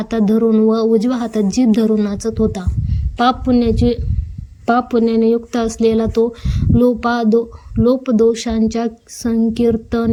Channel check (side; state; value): both; identical; correlation 1.00